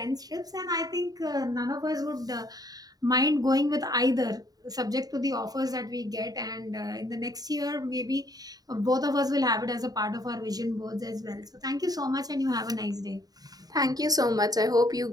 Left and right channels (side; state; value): left; late; 0.18 ms